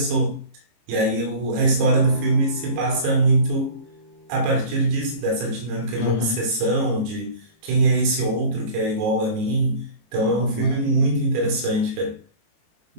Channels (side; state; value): left; late; 18 ms